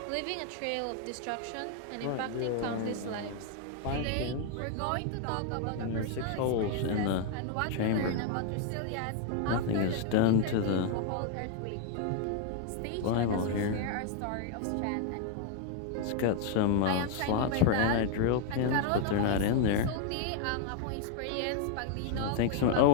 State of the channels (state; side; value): different; both; correlation 0.00